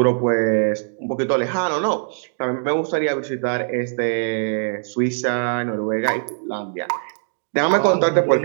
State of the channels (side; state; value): left; silent; digital silence